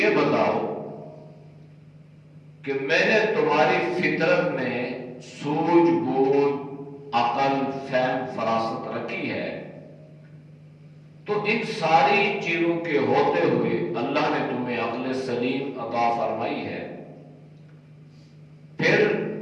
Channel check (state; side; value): identical; both; correlation 1.00